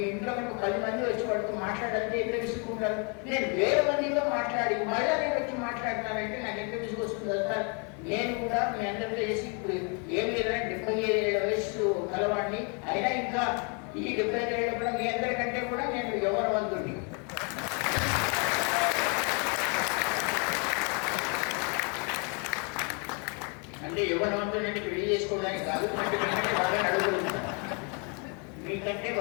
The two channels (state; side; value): quieter; right; 35.6 dB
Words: ఇంట్లో మనకు 10 మంది వచ్చి వాడితో మాట్లాడాలంటే ఎంత విసుకుంటారు. నేను 1000 మందితో మాట్లాడి మళ్ళీ నేను వచ్చి మాట్లాడుతున్నానంటే నాకు ఎంత విసుకొస్తుంది సార్. నేను కూడా మీ అందరితో చేసి ఇప్పుడు ఏం లేదంటే 75 ఏళ్ల వయసు కలవాడిని అయినా ఇంకా ఈ 75 ఏళ్ళ కూడా మీ అందరికంటే కూడా నేను యవ్వనవంతుడిని. అంటే యవ్వనవంతుడిని పెళ్లి చేసుకోవడానికి కాదు, మీకంటే బాగా నడవగలుగుతాను, మీకంటే